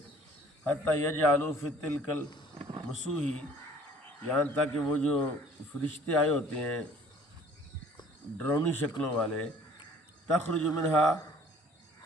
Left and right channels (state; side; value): normal; both; correlation 0.54